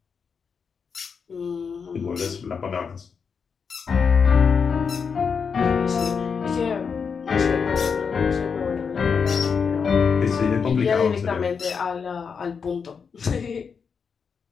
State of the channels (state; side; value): quieter; right; 6.0 dB